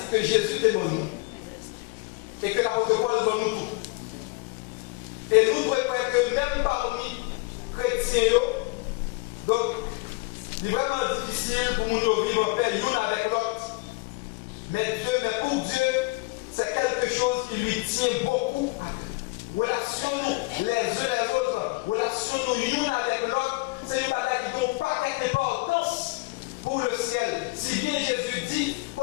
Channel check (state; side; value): quieter; right; 25.3 dB